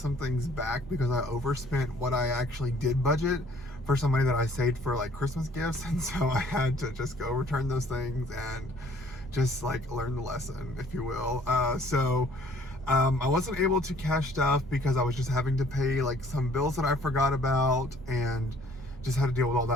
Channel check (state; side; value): normal; both; correlation 0.58